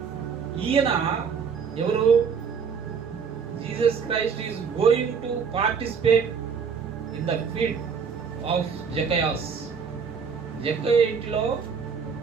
ఈయన ఎవరు? Jesus Christ is going to participate in the feed of Zacchaeus. Zakkayya ఇంటిలో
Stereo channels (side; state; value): left; quieter; 6.2 dB